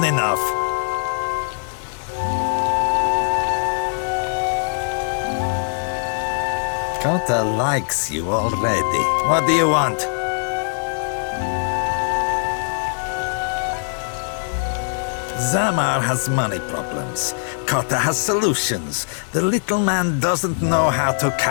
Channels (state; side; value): silent; right; digital silence